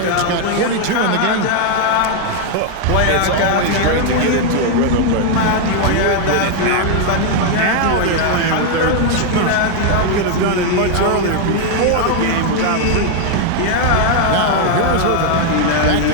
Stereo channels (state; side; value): different; both; correlation 0.01